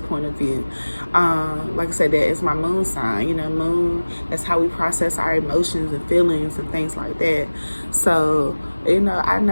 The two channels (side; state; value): both; inverted; correlation -1.00